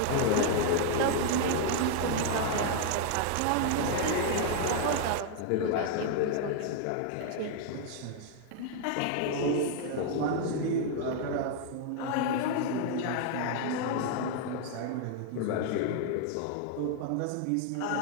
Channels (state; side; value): different; both; correlation 0.00